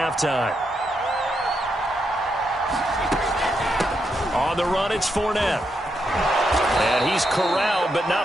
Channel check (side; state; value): both; normal; correlation 0.81